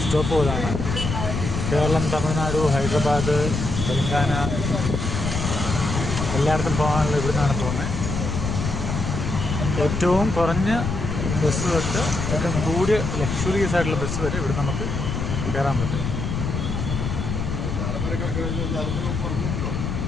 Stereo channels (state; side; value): noise; left; rumble, 3 dB below the sound